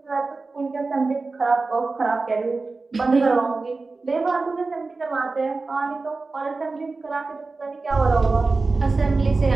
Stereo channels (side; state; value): left; quieter; 3.8 dB